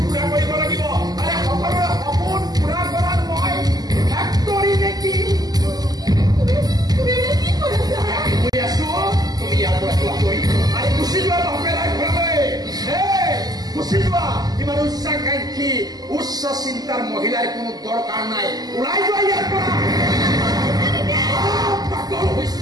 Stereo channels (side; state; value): left; late; 0.19 ms